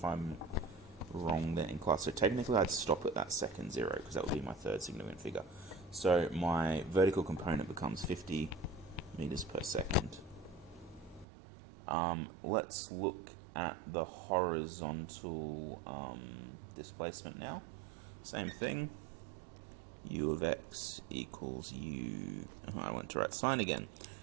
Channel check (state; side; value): drops out; left; at 11.2 s